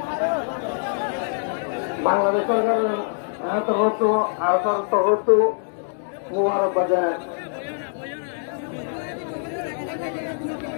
বাংলাদেশ সরকারের তরফ মুবারক বাজায়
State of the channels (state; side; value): silent; right; digital silence